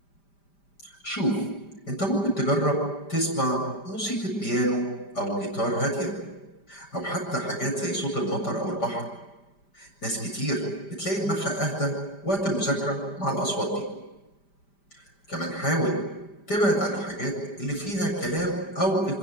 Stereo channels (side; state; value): right; late; 5.0 ms